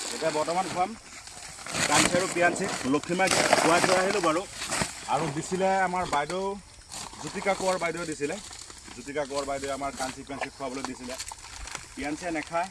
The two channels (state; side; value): identical; both; correlation 1.00